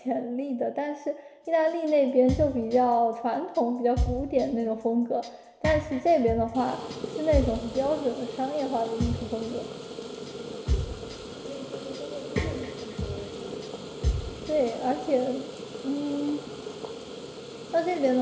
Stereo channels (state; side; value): identical; both; correlation 1.00